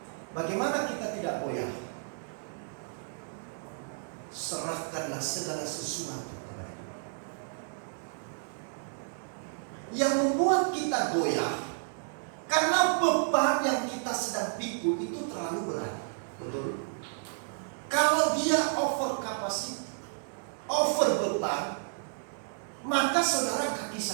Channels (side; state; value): left; silent; digital silence